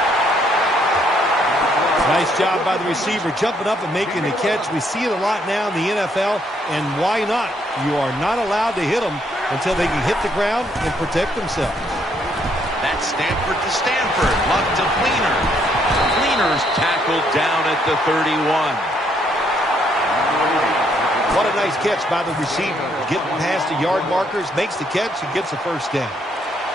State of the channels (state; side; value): normal; both; correlation 0.71